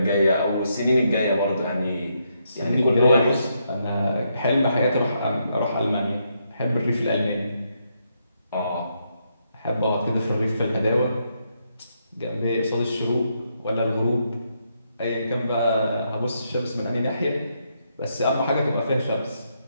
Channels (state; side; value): inverted; both; correlation -0.79